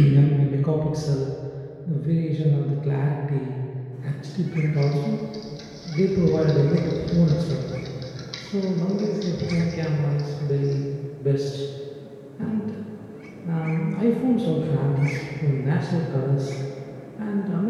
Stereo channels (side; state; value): both; identical; correlation 1.00